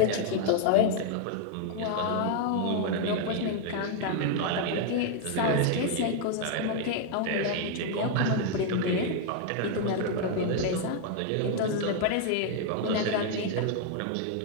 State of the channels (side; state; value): both; different; correlation 0.00